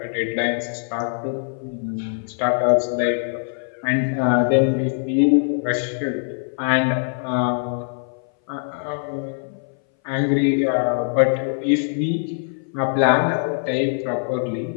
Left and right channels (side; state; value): right; silent; 60 dB below the other